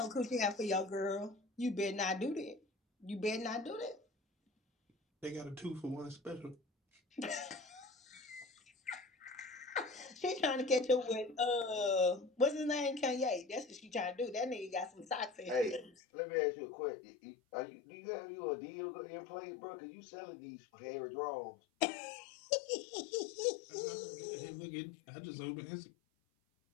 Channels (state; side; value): drops out; right; at 16.0 s